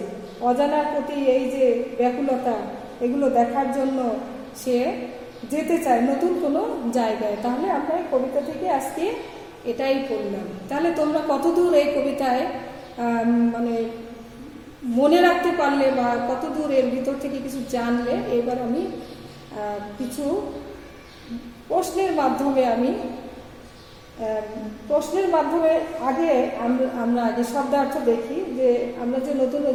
অজানার প্রতি এই যে ব্যাকুলতা, এগুলো দেখার জন্য সে যেতে চায় নতুন কোনো জায়গায়। তাহলে আমরা এই কবিতা থেকে আজকে এটাই পড়লাম। তাহলে তোমরা কতদূর এই কবিতায় মানে মনে রাখতে পারলে বা কতদূর এর ভিতর থেকে কিছু জানলে, এবার আমি কিছু প্রশ্নের মাধ্যমে আগে আমরা আগে শব্দার্থ দেখি, যে আমরা যে নতুন,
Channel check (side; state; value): both; identical; correlation 1.00